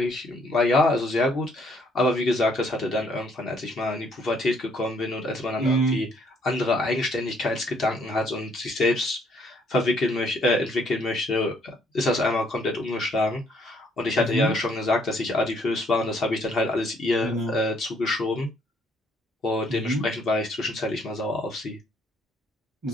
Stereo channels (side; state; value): both; normal; correlation 0.66